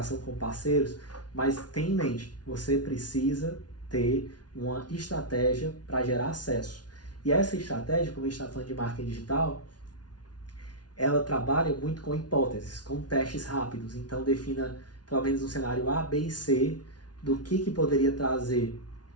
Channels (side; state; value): right; late; 0.69 ms